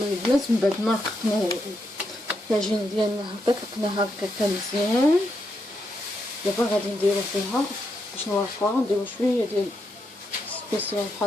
البنات من بعد ما رققنا العجينه ديالنا هكا طلقناها هكا مزيان دابا غادي نديرو فيها باش نورقوها، نديرو شويه ديال سبيسيال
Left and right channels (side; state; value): both; normal; correlation 0.81